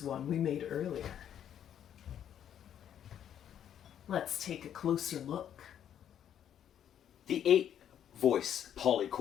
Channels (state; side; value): quieter; right; 9.8 dB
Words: one we made earlier. Let's take a closer look. The 8-voice